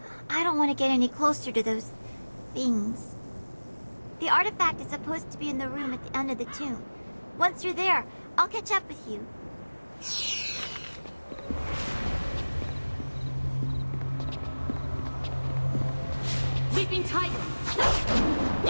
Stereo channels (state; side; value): inverted; both; correlation -1.00